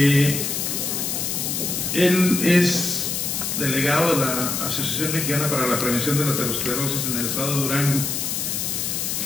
es delegado de la Asociación Mexicana para la Prevención de la Aterosclerosis en el estado de Durango.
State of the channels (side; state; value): left; noise; hiss, 1 dB below the sound